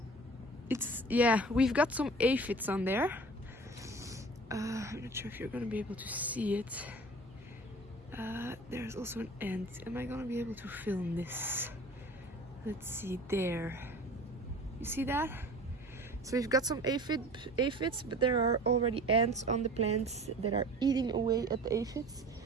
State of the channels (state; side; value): normal; both; correlation 0.42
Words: we've got some aphids on there. I'm not sure if you're gonna be able to see it. There's also an ant. Am I gonna be able to film this? Let's see, there. You see that? So we've got some aphids, but there are already ants on the plants that are eating away at the aphids.